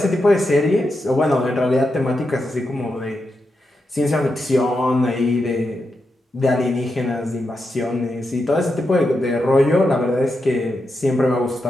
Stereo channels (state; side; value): normal; both; correlation 0.86